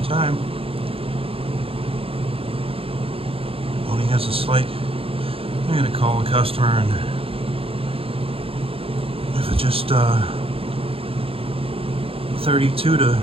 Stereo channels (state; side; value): late; left; 0.27 ms